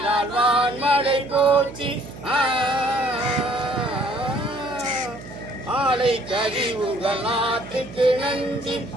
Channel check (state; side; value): noise; right; hum, 15 dB below the sound